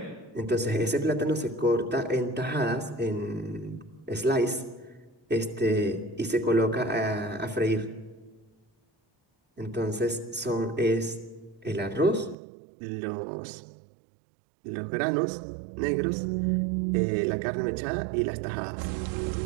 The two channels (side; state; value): left; drops out; at 12.4 s